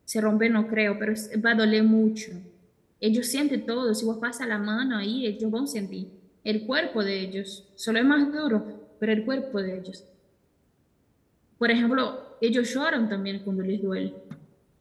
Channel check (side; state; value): both; identical; correlation 1.00